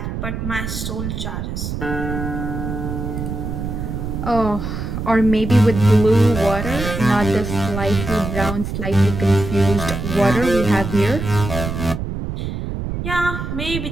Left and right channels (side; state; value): right; noise; rumble, 5 dB below the sound